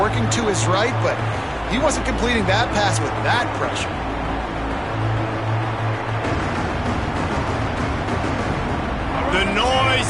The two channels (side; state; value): both; identical; correlation 1.00